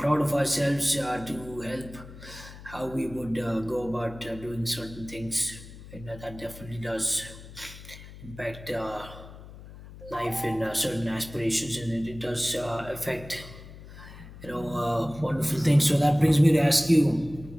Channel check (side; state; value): left; noise; hum, 16 dB below the sound